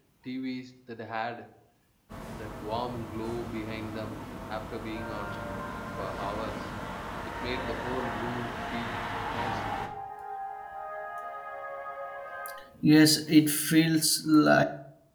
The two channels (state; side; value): identical; both; correlation 1.00